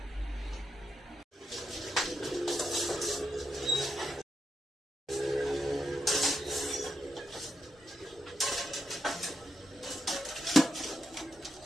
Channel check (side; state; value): both; normal; correlation 0.84